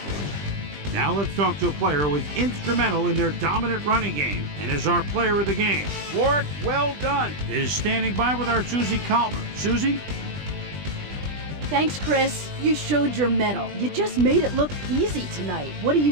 Now let's talk to a player who was instrumental in their dominant running game and is our player of the game. Warwick, well done, is standing by with our Susie Calvert. Susie? Thanks, Chris. You showed your mettle. You just made it look easy tonight. What do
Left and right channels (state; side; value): late; left; 20 ms